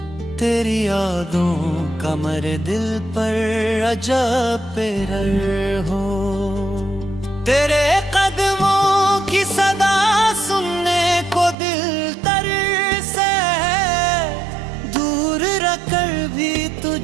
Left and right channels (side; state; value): left; drops out; at 11.6 s